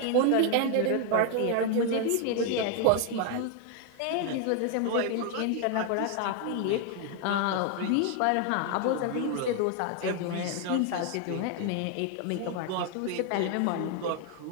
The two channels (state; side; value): different; both; correlation 0.01